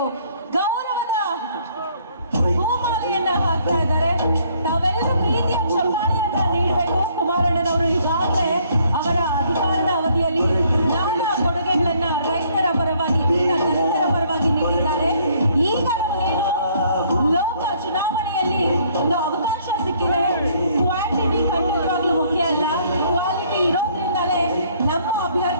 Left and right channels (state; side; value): inverted; both; correlation -0.64